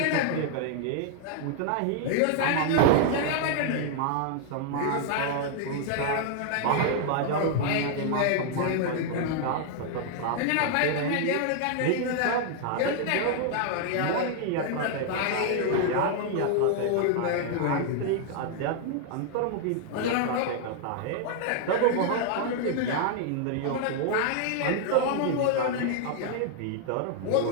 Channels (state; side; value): different; both; correlation 0.00